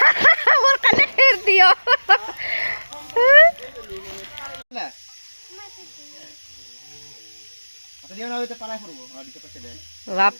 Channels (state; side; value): inverted; both; correlation -1.00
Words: मोर कने फेर दियो না আটা দিও না হইতে পালাই করব আর দিতে পারছে দে বাপ